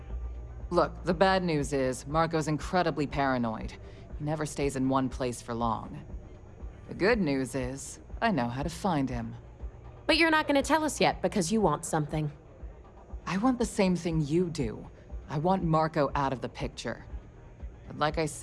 Look, the bad news is, Marco's incredibly paranoid. He never stays in one place for long. The good news is, I know how to find him. But you're not gonna tell us yet because you want something. I want the same thing you do. I want Marco out of the picture. But like I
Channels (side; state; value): both; identical; correlation 1.00